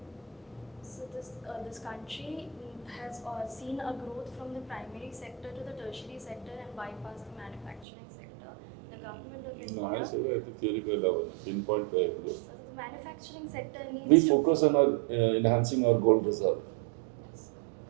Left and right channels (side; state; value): left; drops out; at 7.9 s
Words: So this country has seen a growth from the primary sector to the tertiary sector and bypassed the manufacturing sector. The government of India. No, I say that the theoretical level, pinpoint So the manufacturing sector needs we to focus on our enhancing our gold reserve,